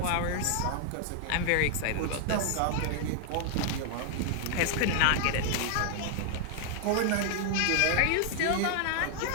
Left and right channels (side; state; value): both; different; correlation 0.00